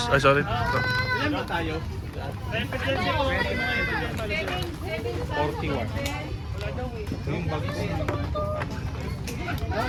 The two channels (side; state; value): both; identical; correlation 1.00